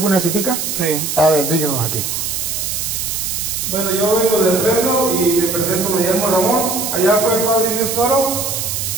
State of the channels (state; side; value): noise; right; hiss, 2 dB below the sound